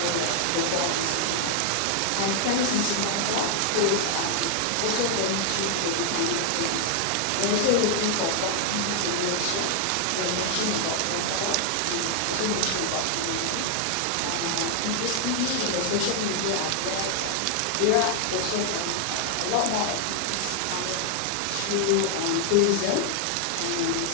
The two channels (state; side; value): different; both; correlation 0.00